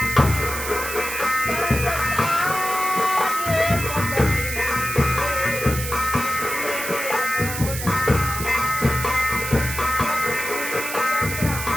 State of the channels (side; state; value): right; noise; hiss, 6 dB below the sound